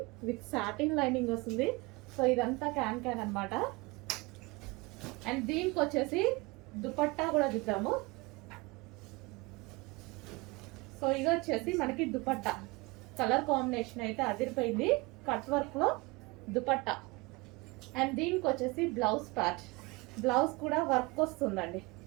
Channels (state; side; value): quieter; left; 25.1 dB